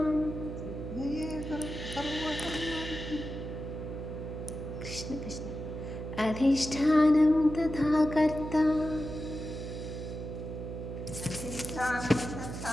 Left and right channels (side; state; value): right; noise; hum, 7 dB below the sound